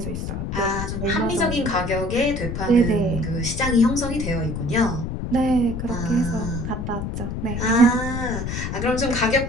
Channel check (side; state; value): left; noise; rumble, 4 dB below the sound